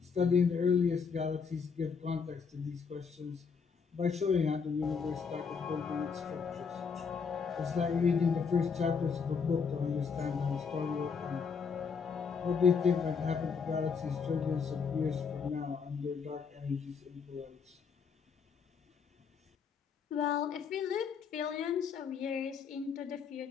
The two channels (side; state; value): right; quieter; 5.8 dB